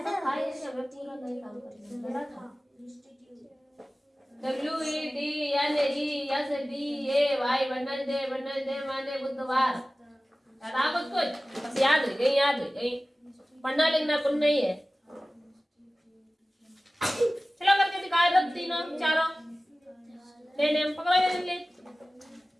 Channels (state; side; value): normal; both; correlation 0.97